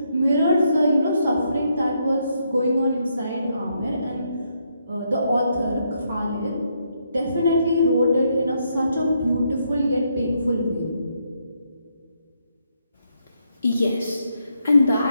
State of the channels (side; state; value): both; inverted; correlation -0.77